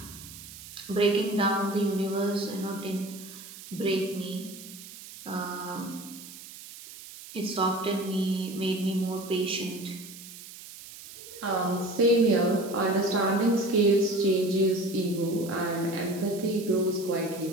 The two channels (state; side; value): noise; right; hiss, 15 dB below the sound